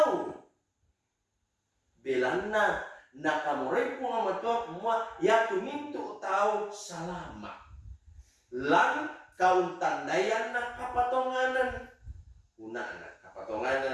belanna nakamuray po nga matua kumwa ya tumintu tau salama lang kauntandayan na kapatonganan una na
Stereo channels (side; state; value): both; identical; correlation 1.00